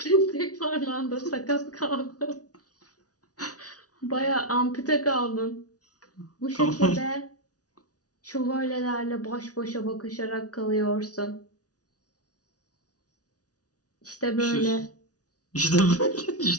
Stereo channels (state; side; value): late; right; 0.68 ms